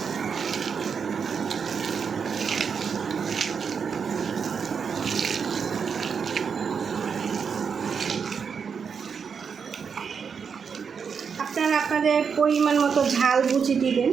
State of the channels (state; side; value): quieter; left; 6.3 dB